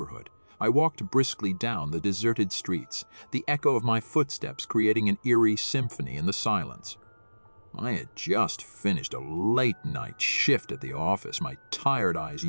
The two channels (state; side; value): inverted; both; correlation -1.00